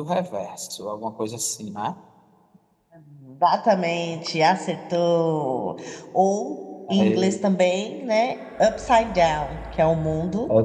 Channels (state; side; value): identical; both; correlation 1.00